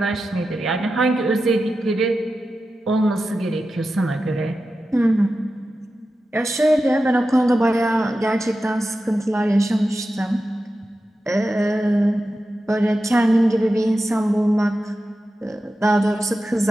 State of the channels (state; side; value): normal; both; correlation 0.92